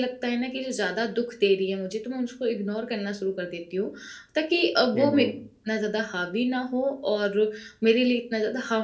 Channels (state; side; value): identical; both; correlation 1.00